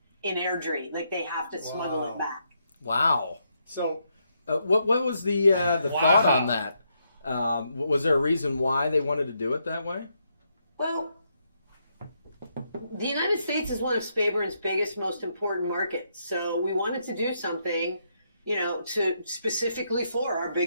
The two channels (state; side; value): inverted; both; correlation -0.78